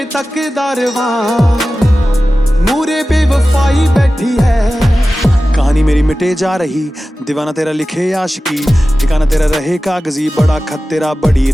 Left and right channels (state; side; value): normal; both; correlation 0.95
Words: तकदारवा मूरे बेवफाई बैठी है। कहानी मेरी मिटे जा रही, दीवाना तेरा लिखे आशिकी, ठिकाना तेरा रहे कागजी, बड़ा खत तेरा बड़ी